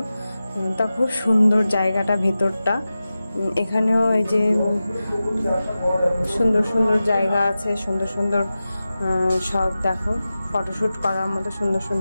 তা খুব সুন্দর জায়গাটা, ভেতরটা। এখানেও এই যে সুন্দর সুন্দর জায়গা আছে, সুন্দর সুন্দর সব দেখো ফটোশ্যুট করার মতো সুন্দর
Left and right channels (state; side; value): inverted; both; correlation -0.94